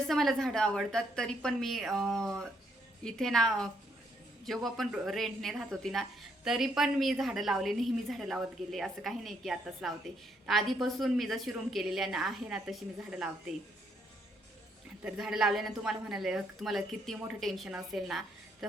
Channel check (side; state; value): both; normal; correlation 0.72